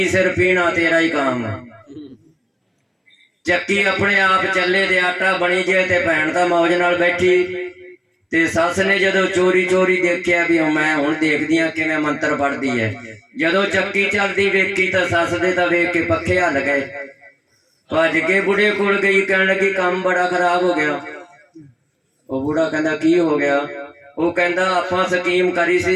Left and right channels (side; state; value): both; identical; correlation 1.00